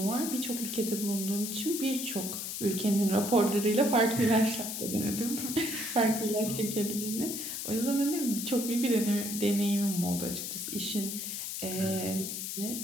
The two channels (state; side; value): noise; left; hiss, 5 dB below the sound